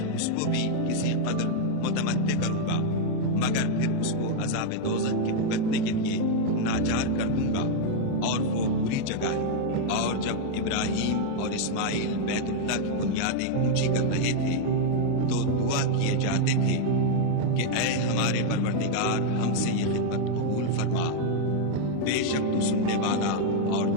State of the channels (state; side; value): different; both; correlation 0.00